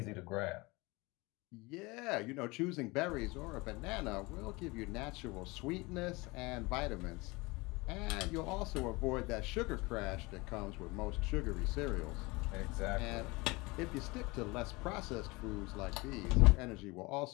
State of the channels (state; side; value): quieter; right; 24.3 dB